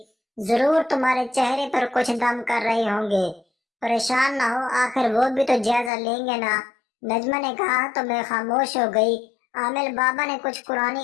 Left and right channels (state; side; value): drops out; right; at 5.9 s